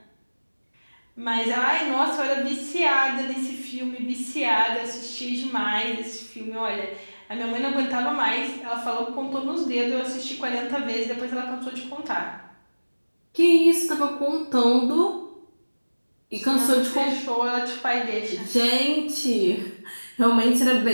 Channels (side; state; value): both; inverted; correlation -1.00